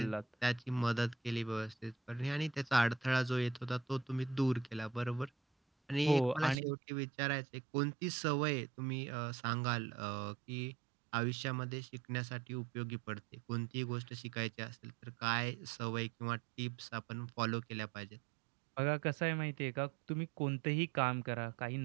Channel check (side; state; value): left; drops out; at 6.6 s